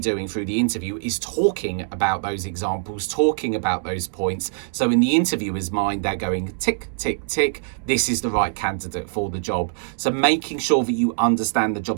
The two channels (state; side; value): silent; left; digital silence